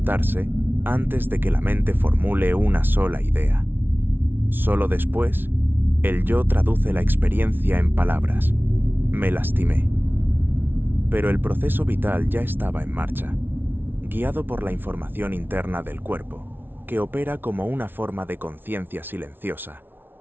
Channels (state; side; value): late; left; 0.10 ms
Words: antes de que la mente formule una sola idea. Solo después, el yo traduce la experiencia en palabras. Me lastimé. Pero el proceso vital ya estaba en marcha, guiado por la información interna del cuerpo, que opera como una forma de conciencia silenciosa,